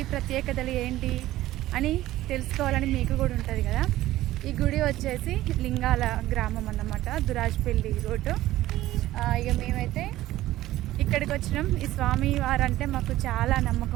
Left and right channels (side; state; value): left; quieter; 15.4 dB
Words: ప్రత్యేకతలు ఏంటి అని తెలుసుకోవాలని మీకు కూడా ఉంటుంది కదా. ఈ గుడి వచ్చేసి లింగాల గ్రామం అన్నమాట, దురాజ్పల్లి రోడ్డు. ఇక మేమైతే ఇక్కడికి వచ్చినాం. ఈ స్వామి వారంటే మాకు చాలా